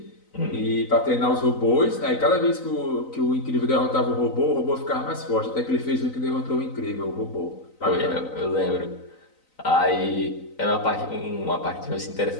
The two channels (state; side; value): late; right; 3.9 ms